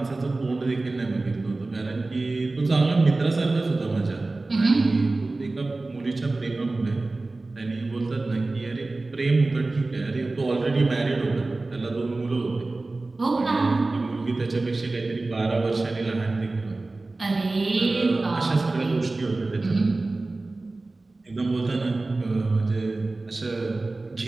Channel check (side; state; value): left; quieter; 3.2 dB